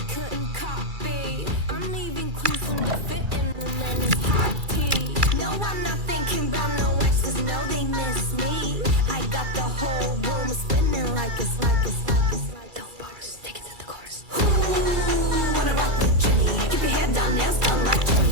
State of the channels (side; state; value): left; late; 2.3 ms